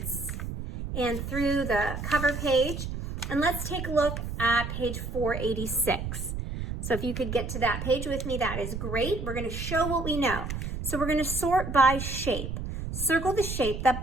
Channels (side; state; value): right; noise; rumble, 5 dB below the sound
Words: and through the cover page, and let's take a look at page 486. So if you could get to that page with me, that is great. We're going to show what we know. So we're going to sort by shape. Circle the shape that